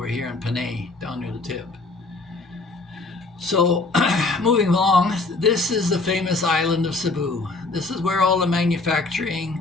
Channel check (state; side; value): quieter; right; 3.4 dB